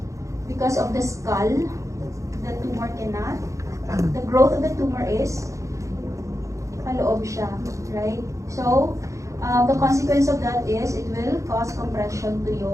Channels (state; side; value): late; left; 0.15 ms